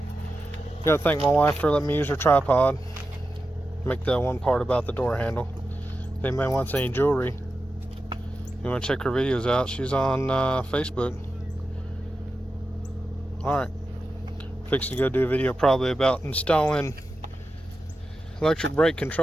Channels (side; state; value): both; normal; correlation 0.91